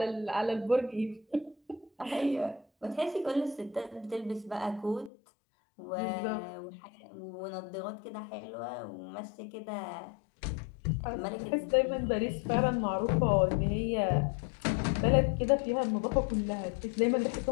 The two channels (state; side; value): drops out; right; at 5.1 s